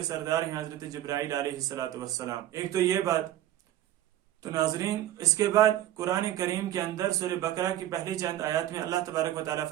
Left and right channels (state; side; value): quieter; left; 12.9 dB